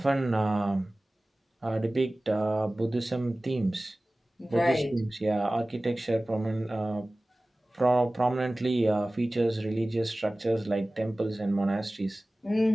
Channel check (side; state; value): both; normal; correlation 0.98